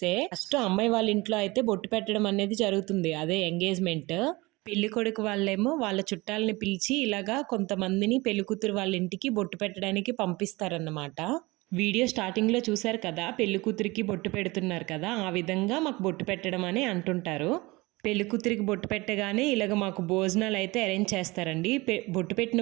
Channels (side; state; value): left; quieter; 22.7 dB